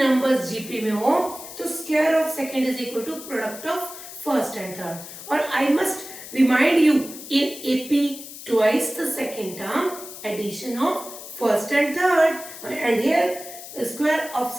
जीपी में हो तो square of second is equal to product of first and third. और I must remind you, in AP twice the second term, addition of first and third, and here square of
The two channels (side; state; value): left; noise; hiss, 13 dB below the sound